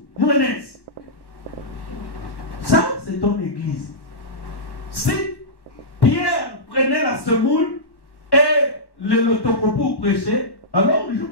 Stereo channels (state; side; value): late; right; 1.1 ms